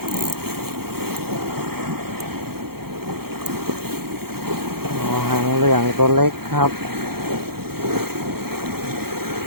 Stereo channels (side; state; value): left; late; 0.95 ms